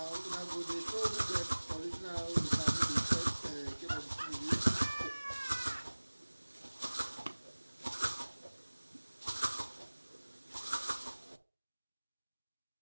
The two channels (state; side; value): inverted; both; correlation -1.00